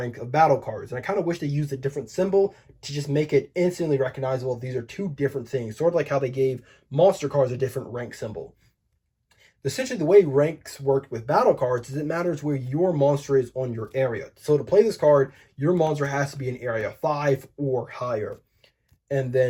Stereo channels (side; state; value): both; identical; correlation 1.00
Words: of battle cards, and I kind of wish they used a different symbol to just make it instantly recognizable. These are 2 different things, sort of like how they gave monster cards a different rank symbol. Essentially, the way ranks work with battle cards is it matters where your monster is on your area. So to play this card, your monster has to be in area 5 or higher. And